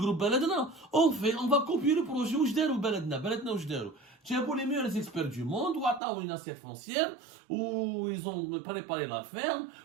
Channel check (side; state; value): left; drops out; at 6.0 s